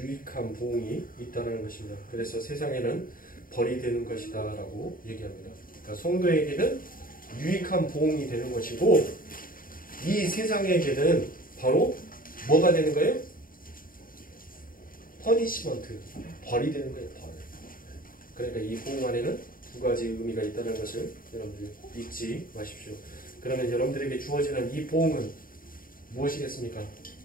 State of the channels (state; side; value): late; right; 0.41 ms